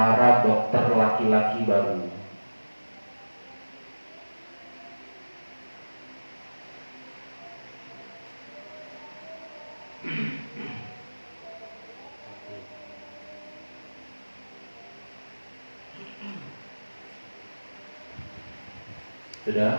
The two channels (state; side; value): inverted; both; correlation -1.00